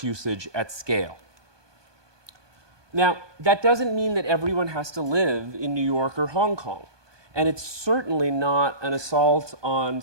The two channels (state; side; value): late; left; 1.2 ms